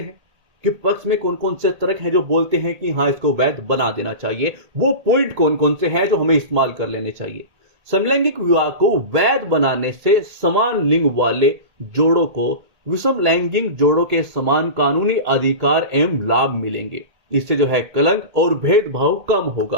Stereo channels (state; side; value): late; left; 1.8 ms